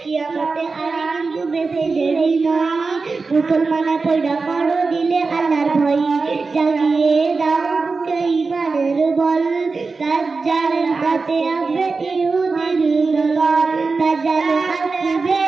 কিয়ামতে আর কিন্তু বেশি দেরি নয়, মুসলমানের পয়দা করো দিলে আল্লাহর ভয়, জাগিয়ে দাও বুকে ইমানের বল, দাজ্জালের হাতে আসবে ইহুদির দল, দাজ্জাল আসবে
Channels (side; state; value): left; quieter; 4.2 dB